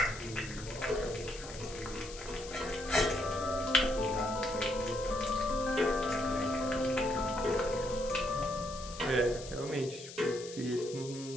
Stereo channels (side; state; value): left; noise; hiss, 13 dB below the sound